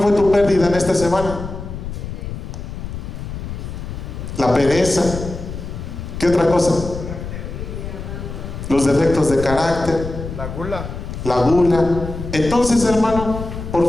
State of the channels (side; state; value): left; noise; rumble, 8 dB below the sound